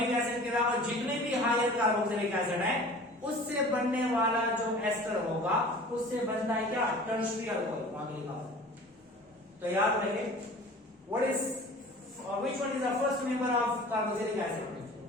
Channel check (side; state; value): both; normal; correlation 0.43